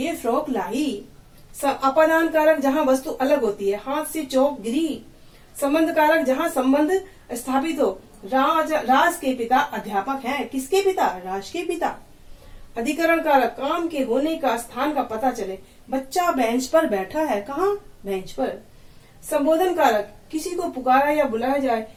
फ्रॉक लाई। अपादान कारक, जहाँ वस्तु अलग होती है, हाथ से चौक गिरी। संबंध कारक, जहाँ संबंध स्थापित हो, राज के पिता अध्यापक हैं, किसके पिता, राज के पिता। अधिकरण कारक, काम के होने का स्थान का पता चले, बच्चा बेंच पर बैठा है, कहाँ, बेंच पर। संबोधन कारक, किसी को पुकारा या बुलाया जाए,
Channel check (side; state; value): both; identical; correlation 1.00